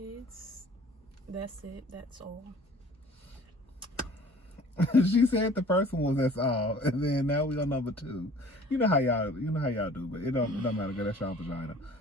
That's it. That's all. She said the first one was that's all, and then now we on number 2. You know how y'all do, but it don't matter. Girl, that's y'all vagina.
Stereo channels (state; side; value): normal; both; correlation 0.50